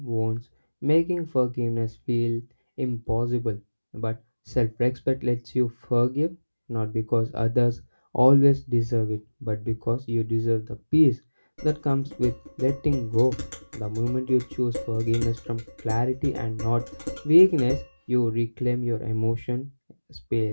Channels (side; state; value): both; inverted; correlation -1.00